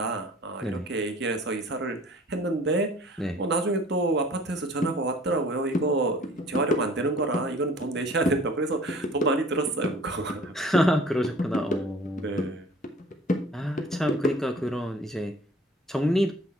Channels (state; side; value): normal; both; correlation 0.49